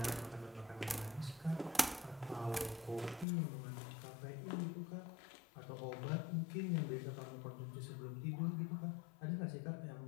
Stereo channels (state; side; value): drops out; right; at 3.2 s